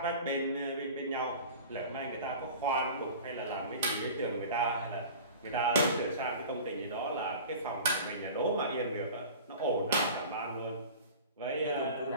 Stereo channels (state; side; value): inverted; both; correlation -0.38